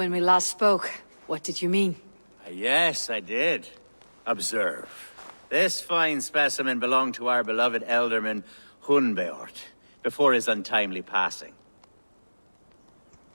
we last spoke. What did you mean? Yes, I did. Observe. This fine specimen belonged to our beloved elderman, Hunbeort, before his untimely passing.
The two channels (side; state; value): both; inverted; correlation -1.00